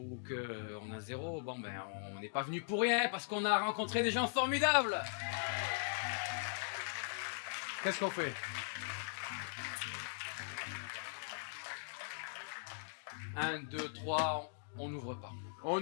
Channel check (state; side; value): silent; right; digital silence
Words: qu'on a 0, on n'est pas venu pour rien, parce qu'on a rencontré des gens formidables. Qu'est-ce qu'on fait? 1, 2, 3, on n'ouvre pas. On